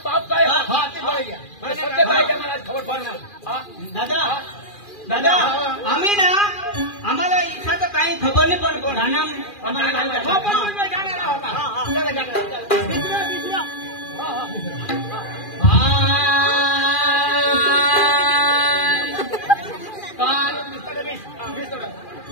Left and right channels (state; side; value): late; right; 2.4 ms